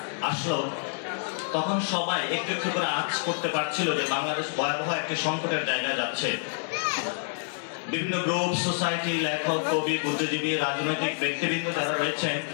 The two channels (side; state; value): right; silent; digital silence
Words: আসলো তখন সবাই একটু একটু করে আঁচ করতে পারছিল যে বাংলাদেশ ভয়াবহ একটি সংকটের জায়গায় যাচ্ছে। বিভিন্ন গ্রুপ, সোসাইটি, লেখক, কবি, বুদ্ধিজীবী, রাজনৈতিক ব্যক্তিবৃন্দ যারা রয়েছেন